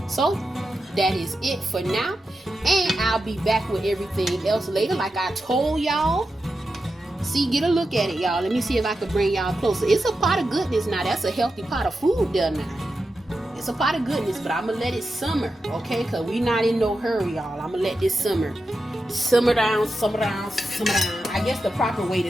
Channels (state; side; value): normal; both; correlation 0.89